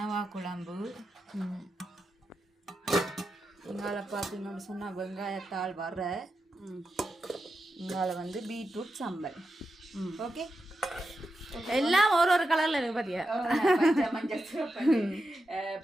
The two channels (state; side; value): normal; both; correlation 0.88